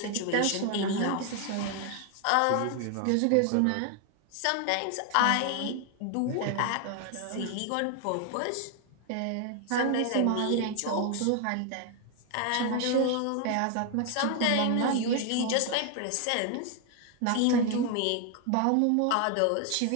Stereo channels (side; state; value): both; different; correlation 0.00